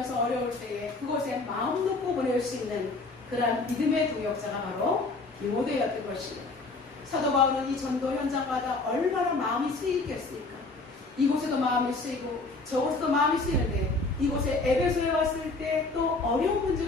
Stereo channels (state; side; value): quieter; right; 3.5 dB